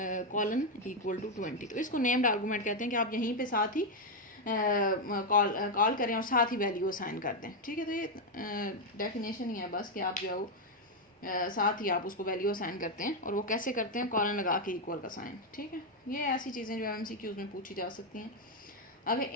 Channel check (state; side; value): normal; both; correlation 0.03